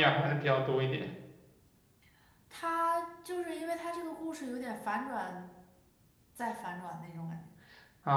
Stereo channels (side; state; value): both; identical; correlation 1.00